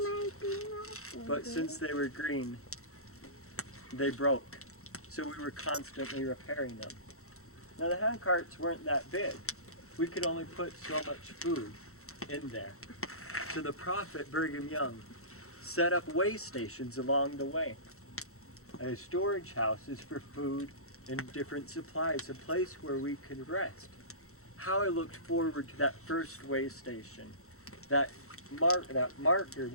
But since they were green, they broke. So we were constantly repairing them. Now the hand carts weren't that big. We could only put so much food in there. So the prophet Brigham Young set up way stations along the way. Storage houses for food and different supplies, a place where we could rest. How I looked forward to that first way station, that marker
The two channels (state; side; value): late; right; 0.63 ms